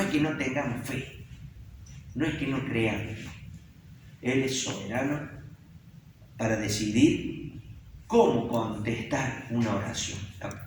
que no tengamos fe, no es que no creamos. Él es soberano para decidir cómo contestar una oración.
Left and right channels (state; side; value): identical; both; correlation 1.00